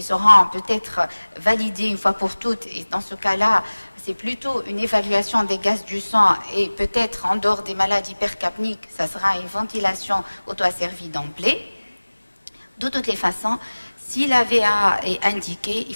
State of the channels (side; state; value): both; inverted; correlation -1.00